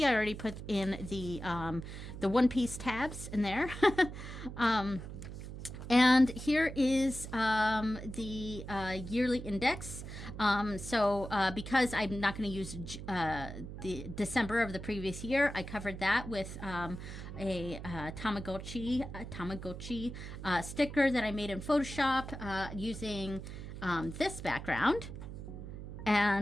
I already put in the one-piece tabs in there. And here is the yearly index. Because I'm not going to use the December of the previous year, I covered that with a Tamagotchi sticker that I made in Photoshop using this background.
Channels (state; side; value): noise; right; hum, 10 dB below the sound